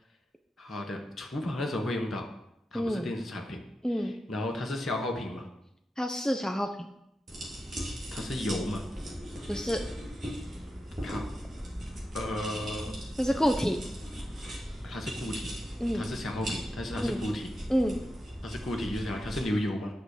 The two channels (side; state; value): both; normal; correlation 0.89